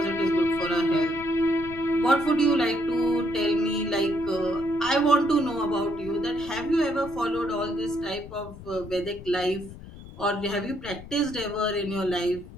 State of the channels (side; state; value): left; noise; rumble, 16 dB below the sound